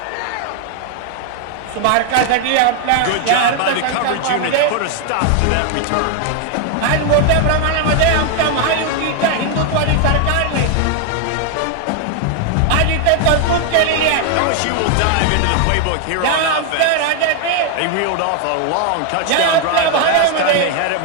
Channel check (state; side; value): different; both; correlation 0.00